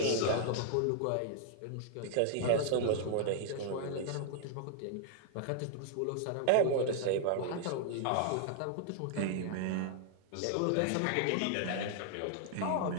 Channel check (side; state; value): both; different; correlation -0.01